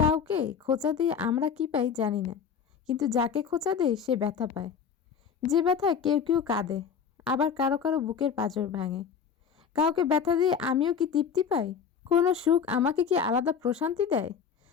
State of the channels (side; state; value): right; quieter; 6.8 dB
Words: কাউকে খোঁচা দিয়ে আমরা কি পাই জানি না, কিন্তু যাকে খোঁচা দেয় সে ব্যথা পায়। যে ব্যথায় কেউ কেউ কাঁদে, আবার কারো কারো বুকের পাঁজর ভাঙে। কাউকে ব্যথা দিয়ে আমিও কি তৃপ্তি পাই? কোনো সুখ আমাকে কি আলাদা প্রশান্তি দেয়?